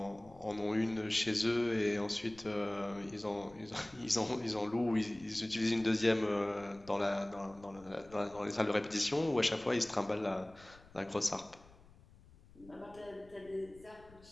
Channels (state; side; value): noise; left; rumble, 24 dB below the sound